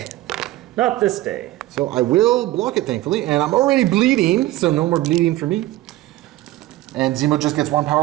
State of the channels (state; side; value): quieter; left; 16.4 dB